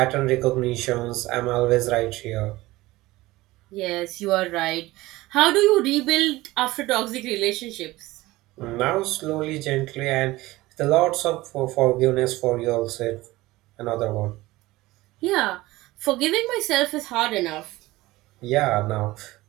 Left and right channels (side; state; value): left; quieter; 18.9 dB